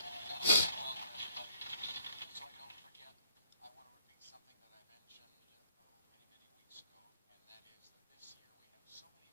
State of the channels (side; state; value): both; inverted; correlation -0.62